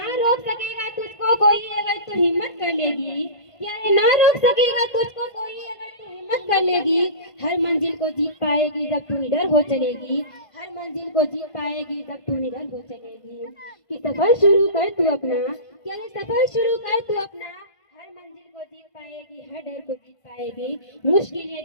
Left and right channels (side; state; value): right; late; 1.5 ms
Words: रोक सकेगा तुझको कोई अगर तू हिम्मत कर लेगी, क्या ना रोक सकेगा तुझको कोई अगर तू हिम्मत कर लेगी, हर मंजिल को जीत पाएगी जब तू निडर हो चलेगी, हर मंजिल को जीत पाएगी जब तू निडर हो चलेगी। कि सफर शुरू कर तू अपना, क्या सफर शुरू कर तू अपना, हर मंजिल को जीत पाएगी, हर डर को जीत पाएगी, मुश्किलें